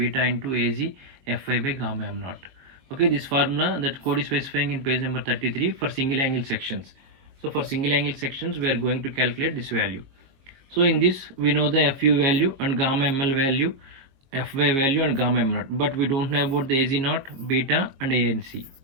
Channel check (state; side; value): late; left; 22 ms